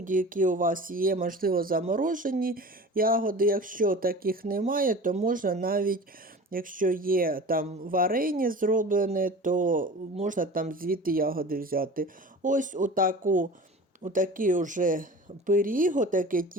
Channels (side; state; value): both; normal; correlation 0.38